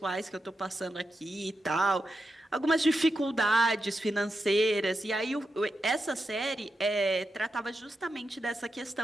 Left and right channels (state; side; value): normal; both; correlation 0.88